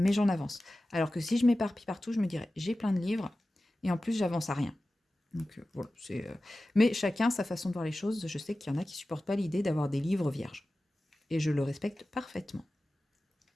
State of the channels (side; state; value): both; normal; correlation 0.95